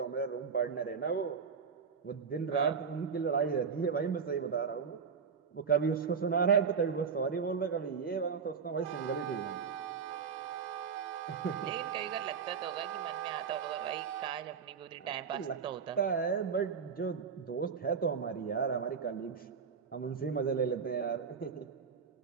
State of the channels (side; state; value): left; quieter; 6.1 dB